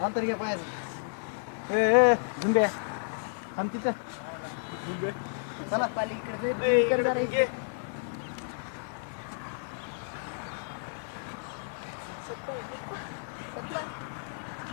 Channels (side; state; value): right; silent; 57 dB below the other